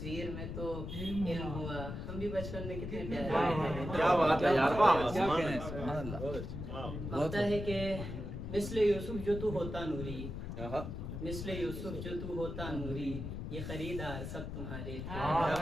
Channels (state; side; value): noise; left; rumble, 6 dB below the sound